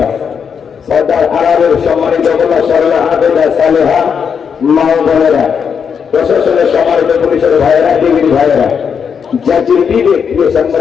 সর্দার আরবের সম্মানিত গোলা সরলা আবেদা সালেহা মা ও বোনেরা, প্রশাসনের সম্মানিত পুলিশের ভাইয়েরা, ডিগ্রি ভাইয়েরা, জাতির বিবেক প্রিয়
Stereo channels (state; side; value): quieter; right; 6.8 dB